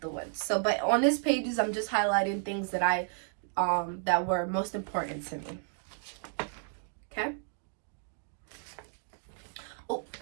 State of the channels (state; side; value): silent; left; 56 dB below the other